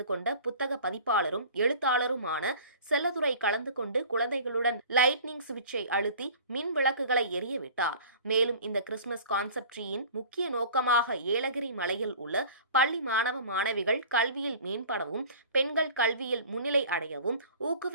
கொண்ட புத்தக பதிப்பாளரும் எழுத்தாளருமான செல்லதுரை கலந்து கொண்டு குழந்தைகளுடன் லைட்னிங் சுவிட்சை அழுத்தி மின் விளக்குகளை விட்டார். மேலும் இந்த கிறிஸ்துமஸ் கான்செப்ட் ட்ரீயின் முக்கிய நோக்கமாக ஏலகிரி மலையில் உள்ள பள்ளி மாணவ மாணவிகள் கல்வியில் மேம்படவும் பெண்கள் கல்வியில் முன்னிலை அடையவும்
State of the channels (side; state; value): both; inverted; correlation -0.43